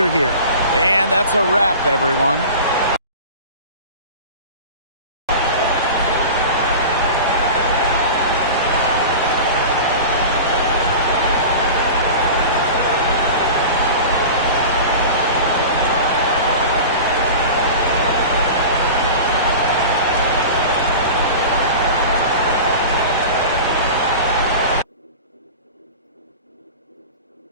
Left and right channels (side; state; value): both; inverted; correlation -0.34